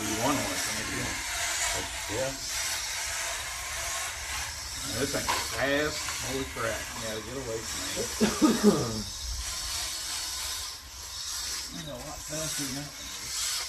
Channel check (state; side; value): identical; both; correlation 1.00